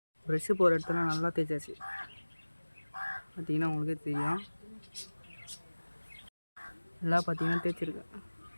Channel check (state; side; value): inverted; both; correlation -1.00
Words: ப்ரெஷ்ஷு போகிற இடத்துல நல்லா தேய்ச்சாச்சு. பார்த்தீங்கன்னா உங்களுக்கே தெரியும், நல்லா பார்த்தீங்கன்னா தேய்ச்சிருக்கேன்.